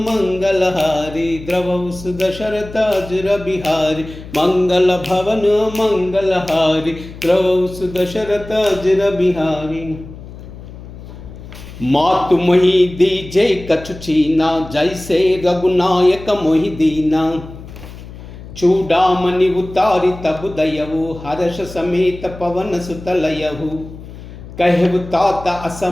हारी, द्रवहु दशरथ अजर बिहारी, मंगल भवन मंगल हारी, द्रवहु दशरथ अजर बिहारी। मातु मोहि दीजे कछु चीना, जैसे रघुनायक मोहि दीना, चूड़ामणि उतारी तब दयहु, हर्ष समेत पवन सुत लयहु, कहु तात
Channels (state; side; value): noise; left; hum, 15 dB below the sound